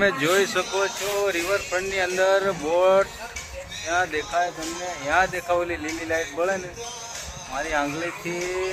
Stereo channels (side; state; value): both; identical; correlation 1.00